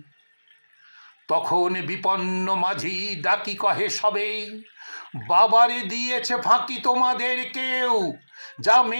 তখন বিপন্ন মাঝি ডাকি কহে সবে, বাবারে দিয়েছে ফাঁকি তোমাদের কেউ, যা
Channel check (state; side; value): inverted; both; correlation -1.00